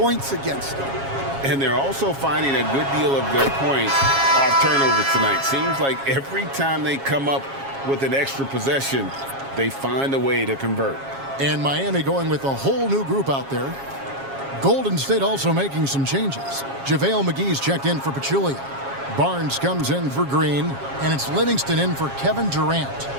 against them. And they're also finding a good deal of their points off turnovers tonight. Seems like every time they come up with an extra possession, they find a way to convert. And Miami going with a whole new group out there. Golden State also making some changes. JaVale McGee's checked in for Pachulia. Barnes comes in for Green. And it's Livingston in for Kevin Durant.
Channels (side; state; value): left; late; 7.3 ms